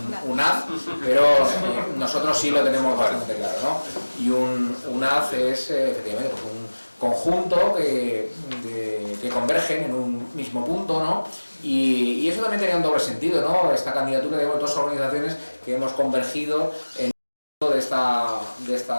un haz, pero nosotros sí lo tenemos bastante claro, ¿no? Y un haz es efectivamente un conjunto que convergen en un mismo punto, ¿no? Y eso también tenía un doble sentido, ¿no? Esta candidatura de dos organizaciones que hemos convergido en de esta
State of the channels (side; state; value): both; inverted; correlation -1.00